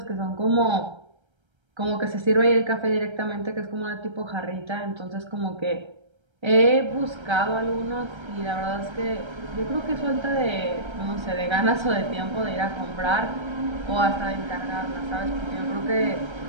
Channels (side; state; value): left; late; 1.3 ms